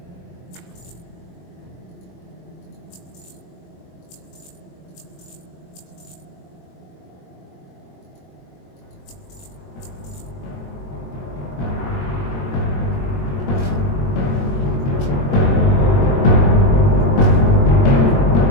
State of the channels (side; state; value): right; late; 22 ms